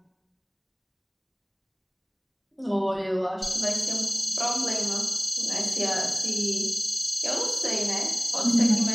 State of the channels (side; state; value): both; identical; correlation 1.00